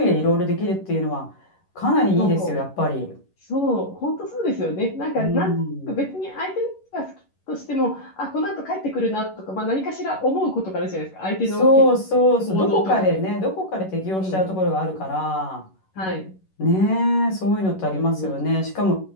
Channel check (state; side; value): late; right; 11 ms